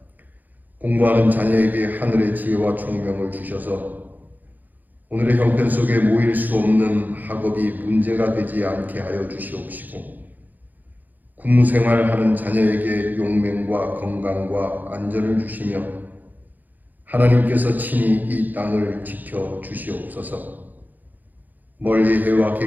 공부하는 자녀에게 하늘의 지혜와 총명을 주셔서 오늘의 형편 속에 모일 수 없는 학업이 문제가 되지 않게 하여 주시옵시고 군무생활하는 자녀에게 용맹과 건강과 안전을 주시며 하나님께서 친히 이 땅을 지켜 주시옵소서. 멀리 해와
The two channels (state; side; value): late; left; 0.084 ms